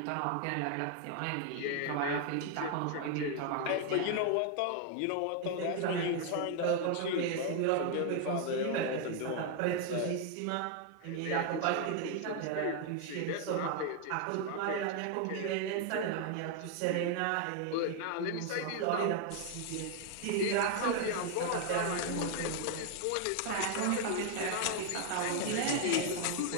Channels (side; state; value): both; different; correlation 0.00